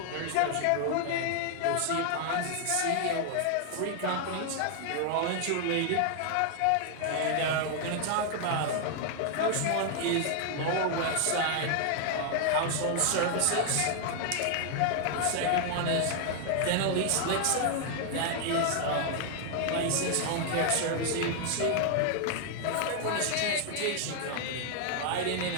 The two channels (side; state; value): both; different; correlation 0.00